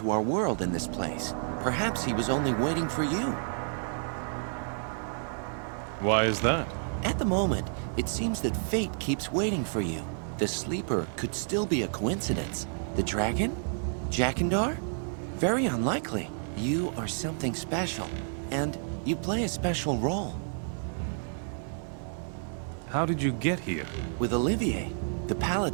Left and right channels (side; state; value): left; silent; digital silence